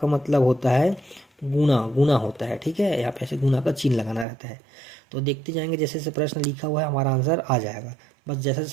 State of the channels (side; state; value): left; drops out; at 4.2 s